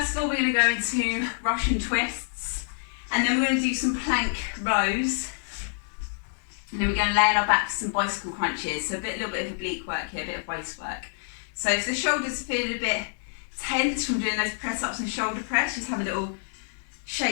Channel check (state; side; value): silent; right; 60 dB below the other